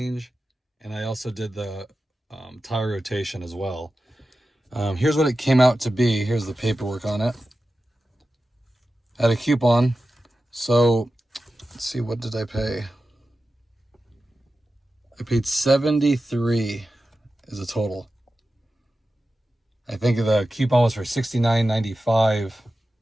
and I also did the tire rotation as well. Here's what it came out to be. Here's the paperwork on it. I had a coupon. So let's see, what did I pay? I paid $73 as a total. I think the coupon was for $69.95.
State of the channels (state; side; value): normal; both; correlation 0.93